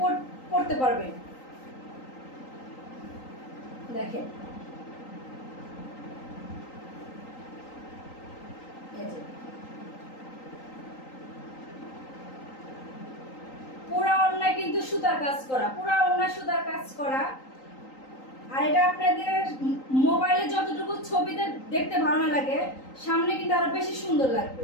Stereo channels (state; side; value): late; right; 3.8 ms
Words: পড়তে পারবে। দেখেন পুরা ওড়নায় কিন্তু সুতার কাজ করা, পুরা ওড়নায় সুতার কাজ করা। আর এটা আপনাদের মোবাইলে যতটুকু ছবিতে দেখতে ভালো না লাগে, সামনে কিন্তু আরো বেশি সুন্দর লাগবে,